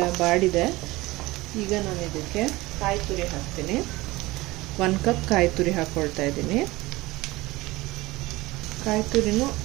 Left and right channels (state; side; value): quieter; left; 20.3 dB